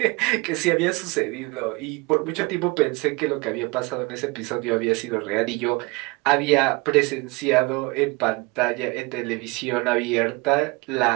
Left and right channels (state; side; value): quieter; left; 26.4 dB